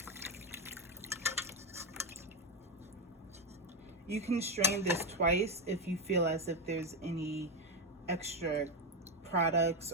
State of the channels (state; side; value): normal; both; correlation 0.10